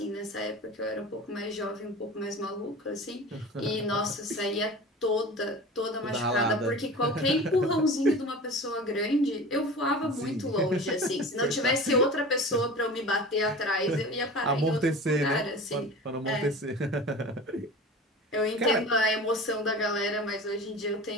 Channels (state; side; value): normal; both; correlation 0.36